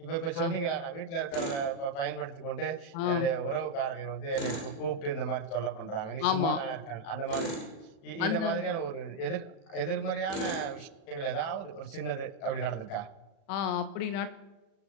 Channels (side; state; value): right; late; 36 ms